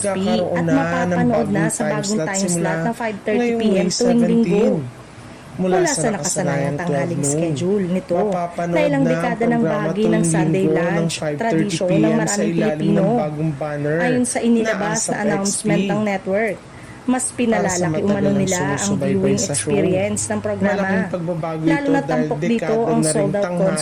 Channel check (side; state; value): both; identical; correlation 1.00